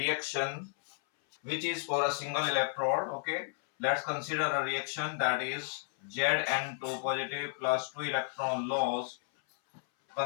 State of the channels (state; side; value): silent; right; 56 dB below the other